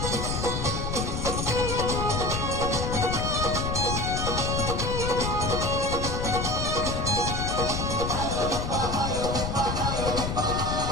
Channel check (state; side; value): noise; left; rumble, 2 dB below the sound